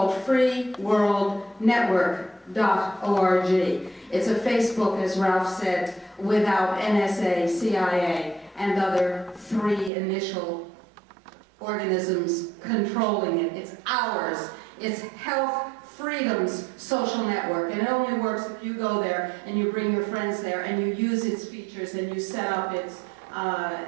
freeworldnetwork.org. It's a Facebook, as Ralph said, without NSA, CIA, and other three initial organisms controlling it. It's ours. It's Health Freedom's social network, and it only works if you go there and you bring your friends there and you use its features and you set up its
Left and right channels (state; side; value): drops out; left; at 9.9 s